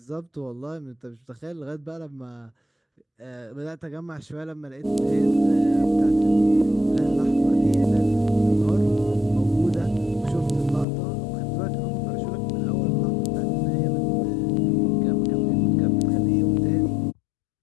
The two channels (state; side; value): drops out; right; at 10.9 s